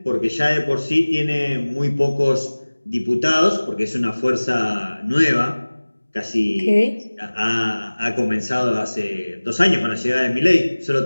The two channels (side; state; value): both; inverted; correlation -1.00